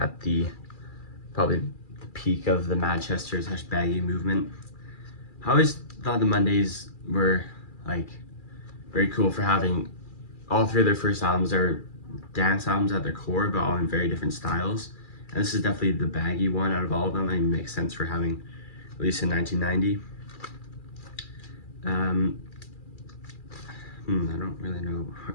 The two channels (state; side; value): late; right; 2.4 ms